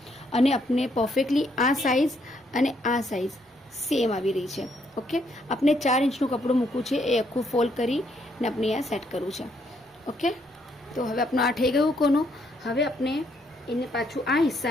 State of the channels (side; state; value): both; normal; correlation 0.72